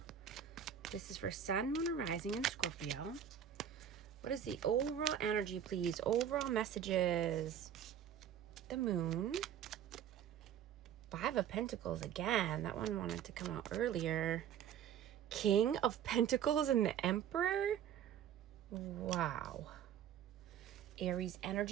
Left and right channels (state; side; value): quieter; left; 9.4 dB